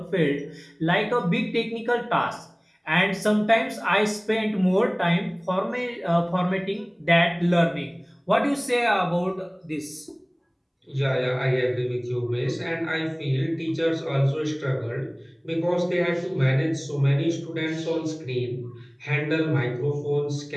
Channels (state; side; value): identical; both; correlation 1.00